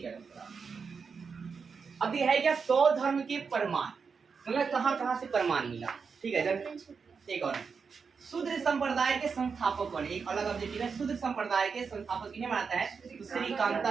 गया। अब ये है क्या 100 धर्म के प्रमाण, मतलब कहाँ कहाँ से प्रमाण मिला, ठीक है। जब एक और शूद्र संप्रदाय के संस्थापक कौन, एक अलग ऑब्जेक्टिव है, शूद्र संप्रदाय के संस्थापक किन्हें मानता है, तो श्री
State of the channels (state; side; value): quieter; left; 5.5 dB